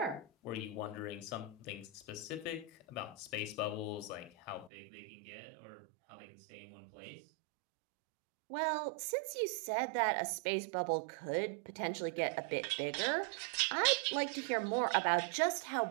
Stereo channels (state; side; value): drops out; left; at 4.7 s